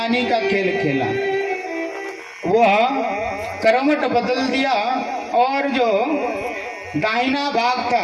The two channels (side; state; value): both; identical; correlation 1.00